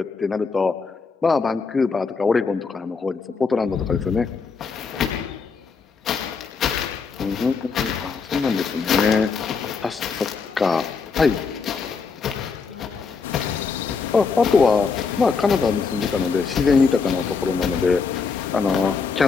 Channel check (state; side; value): quieter; right; 5.1 dB